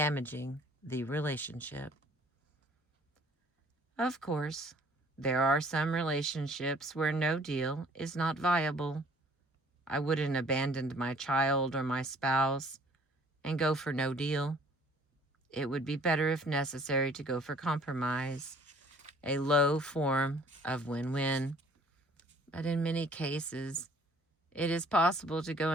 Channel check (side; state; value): both; normal; correlation 0.56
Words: the relationship. Of course, there are some relationships where no deal is not viable. I wouldn't abandon my child or my spouse and go for no deal. It would be better, if necessary, to go for compromise, a low form of win-win. But in many cases, it is possible to go